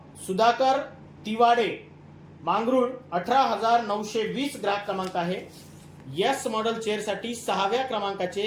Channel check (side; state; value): both; identical; correlation 1.00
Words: सुधाकर तिवाडे मांगरूळ 18,920 ग्राहक क्रमांक आहे. यस मॉडेल चेअरसाठी 6व्या क्रमांकाचे